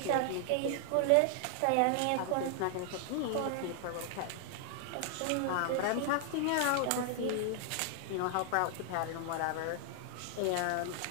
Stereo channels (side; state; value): both; different; correlation 0.00